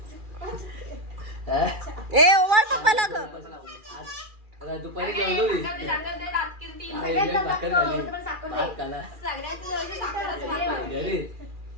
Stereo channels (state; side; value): late; left; 2.4 ms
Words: ए ओवाळ पप्पाला ग. आता दुपारी जेवलो मी. आई लय भाकर झाली. भात खाला. घरी.